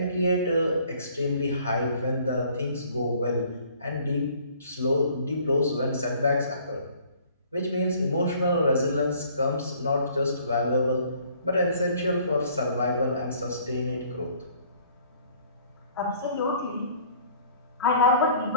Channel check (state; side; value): inverted; both; correlation -0.57